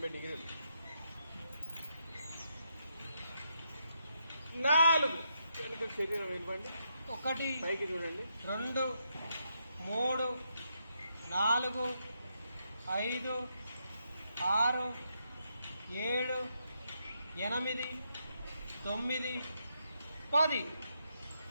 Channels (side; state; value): both; inverted; correlation -0.80